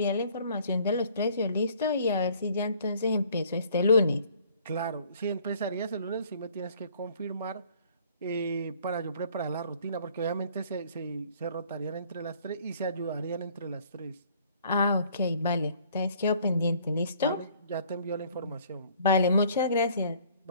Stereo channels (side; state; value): both; inverted; correlation -0.57